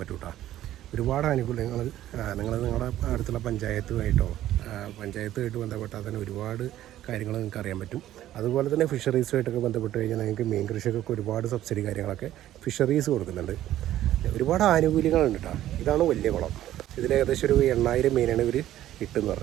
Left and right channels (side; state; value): left; quieter; 13.1 dB